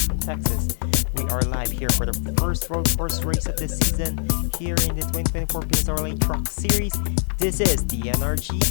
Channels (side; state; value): right; silent; digital silence